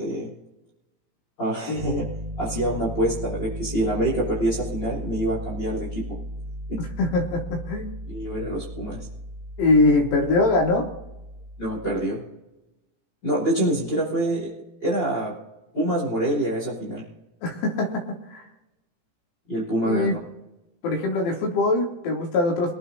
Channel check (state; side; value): late; right; 18 ms